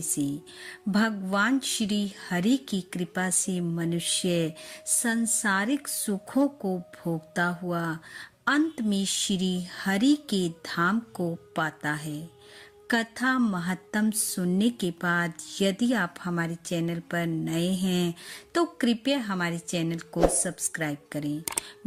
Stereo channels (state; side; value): identical; both; correlation 1.00